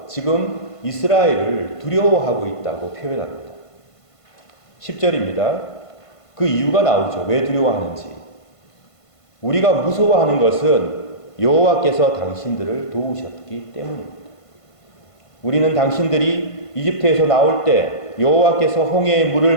지금 이스라엘을 두려워하고 있다고 표현합니다. 10절입니다. 그 이유가 나오죠. 왜 두려워하는지. 우리가 무서워하는 것은 여호와께서 당신들을 도우셨기 때문입니다. 우리는 당신들이 이집트에서 나올 때 여호와께서 홍해의 물을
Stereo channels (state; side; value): late; right; 1.5 ms